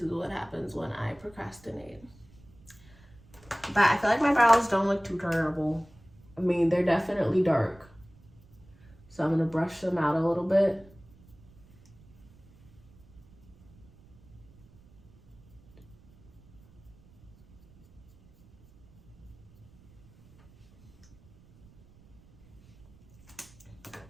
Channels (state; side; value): noise; right; rumble, 26 dB below the sound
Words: what happens when I procrastinate. But I feel like my brows don't look too terrible. I mean, they're definitely dark. So I'm gonna brush them out a little bit.